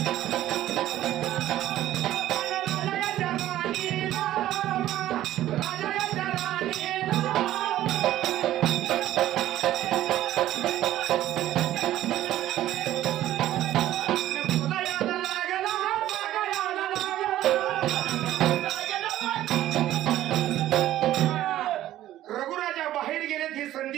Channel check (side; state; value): left; quieter; 13.6 dB